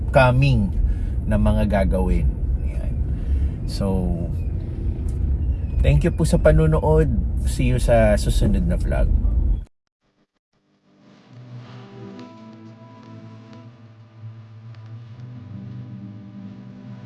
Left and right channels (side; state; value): both; identical; correlation 1.00